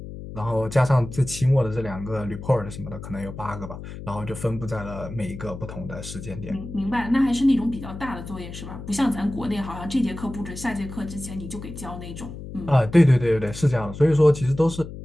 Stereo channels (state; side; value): noise; left; hum, 11 dB below the sound